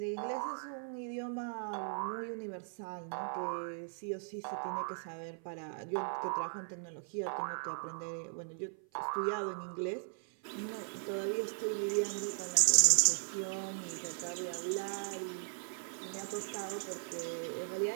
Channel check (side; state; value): left; silent; 53 dB below the other